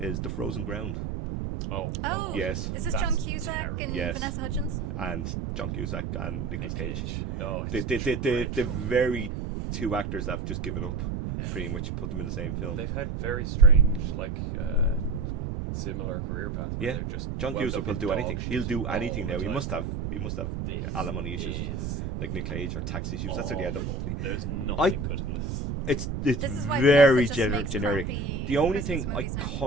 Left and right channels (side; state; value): right; noise; rumble, 3 dB below the sound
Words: The Frozen Ground. Oh. Oh, Yes. Is this That's John Cusack terrible. and Yes. Vanessa Hudgens? And John Cusack and Nicolas Cage. Oh, The it's dreadful. very two actors that have just given up, pretty much put them in the same film. They've had very strange, like, similar career path. Where Yeah. they're just John wound Cusack up will in do dog anything. shit He'll do all anything the now. He time. must have This alimony issues or is something, like Nick Cage or tax issues. That's what he end up. awful. There's nothing good in this. It's This is why very Vanessa just makes generic. crappy The only Christmas thing I movies now.